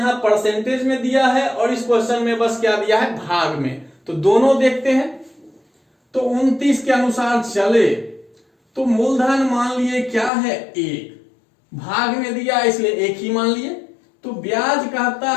परसेंटेज में दिया है और इस क्वेश्चन में बस क्या दिया है, भाग में। तो दोनों देखते हैं। तो 29 के अनुसार चले तो मूलधन मान लिए क्या है 1, भाग में दिया इसलिए 1 ही मान लिए। तो ब्याज कहता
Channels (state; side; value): drops out; right; at 10.3 s